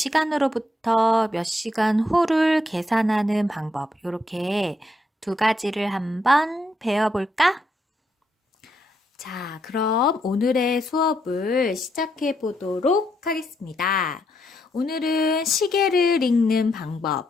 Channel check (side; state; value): both; normal; correlation 0.78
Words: 몇 시간 후를 계산하는 방법, 이렇게 두 가지를 한번 배워볼까? 자, 그럼 오늘의 수업을 시작해 보도록 하겠습니다. 오늘은 시계를 읽는